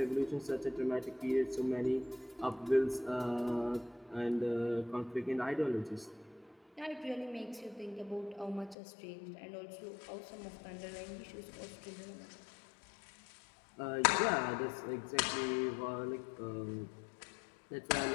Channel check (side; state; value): right; drops out; at 8.8 s